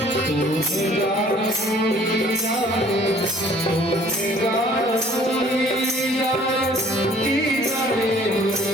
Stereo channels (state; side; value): normal; both; correlation 0.55